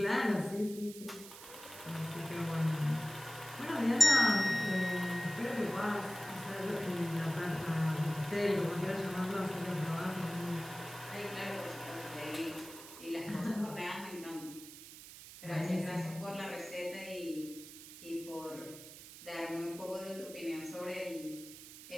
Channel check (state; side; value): noise; right; hiss, 15 dB below the sound